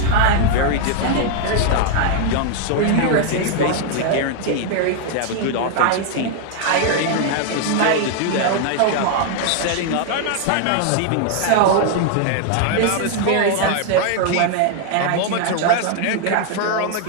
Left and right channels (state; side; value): different; both; correlation 0.00